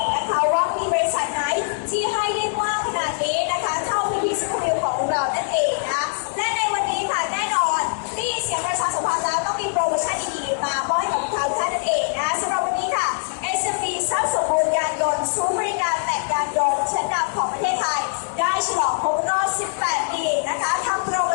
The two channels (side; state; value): right; silent; digital silence